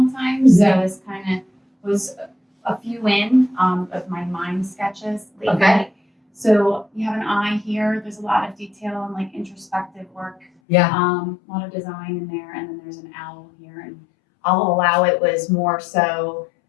time. So this kind of was a few in of my mind sketches lately. Okay. So you have an eye here. There's a lot of detail and like introspective work. Yeah. A lot of design in there. And then there's an owl here. And I'll Allow It was more so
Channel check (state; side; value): drops out; right; at 10.5 s